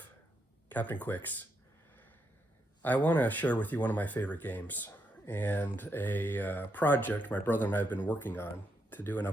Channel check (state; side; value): normal; both; correlation 0.80